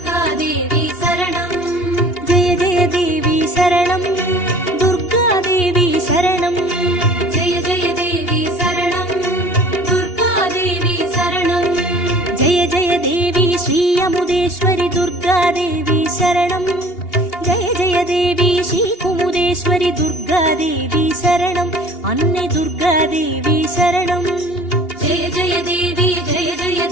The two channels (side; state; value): right; late; 2.8 ms